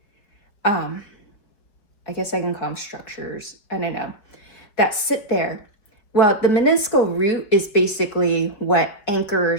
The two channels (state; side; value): late; right; 4.7 ms